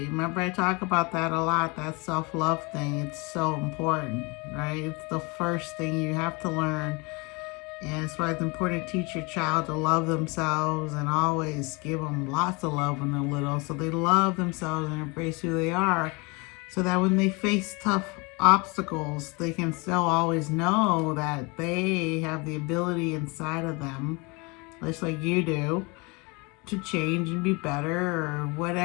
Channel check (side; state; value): right; quieter; 28.3 dB